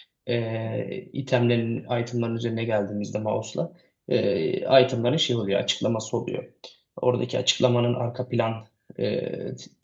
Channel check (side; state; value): both; identical; correlation 1.00